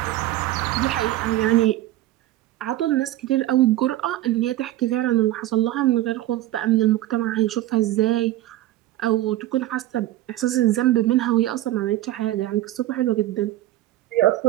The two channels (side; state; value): left; quieter; 15.1 dB